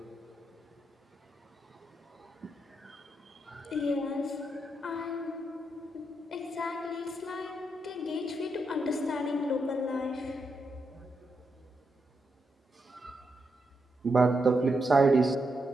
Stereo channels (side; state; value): both; normal; correlation 0.82